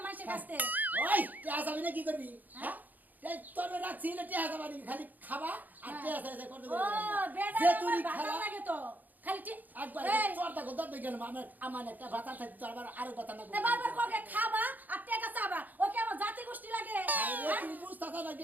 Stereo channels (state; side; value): late; left; 0.083 ms